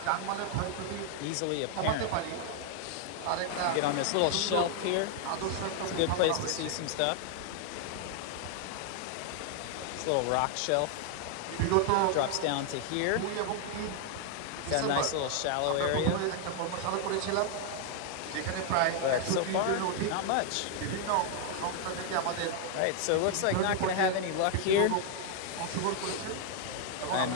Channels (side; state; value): both; different; correlation 0.00